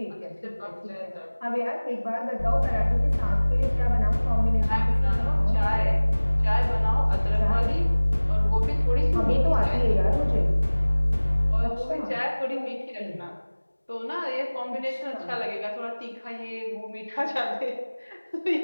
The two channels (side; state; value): both; inverted; correlation -1.00